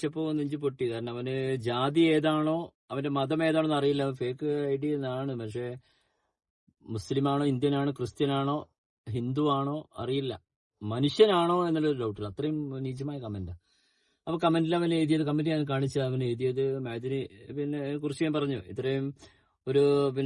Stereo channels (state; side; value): identical; both; correlation 1.00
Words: നെഞ്ചു പൊട്ടി. കാരണം അവന് ജാതി ഏതാണോ അവന്റെ മതം ഏതാണെന്ന് അറിയില്ല. ഫേക്ക് ഐഡി എന്നാണ്. പക്ഷെ മുസ്ലിമാണോ, ഇന്ത്യനാണോ, ക്രിസ്ത്യനാണോ, ഹിന്ദു ആണോ അറിയില്ല. മനുഷ്യനാണോ എന്നുള്ളൊരു ഡൗട്ടില്ല. അത്രയും നീചമായ കമന്റാ. അപ്പൊ കമന്റിൽ അവൻ എഴുതിയത്, കമന്റ് ഞാൻ കാണിച്ച അവൻ എഴുതിയത് മഅദനി പിന്നെ കുറിച്ച് ഞാൻ പറഞ്ഞു. ഇത്രയും ഒരു